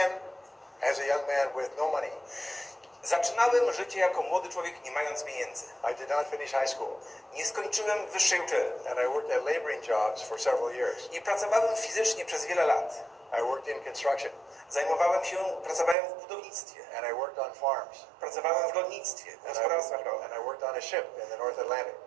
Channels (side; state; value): left; drops out; at 16.0 s